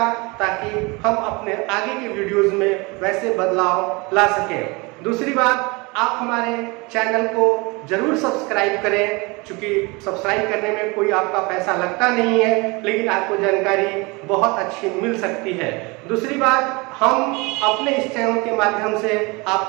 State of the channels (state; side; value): quieter; left; 26.5 dB